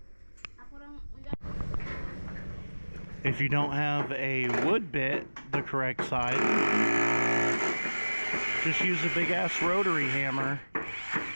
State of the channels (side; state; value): both; inverted; correlation -1.00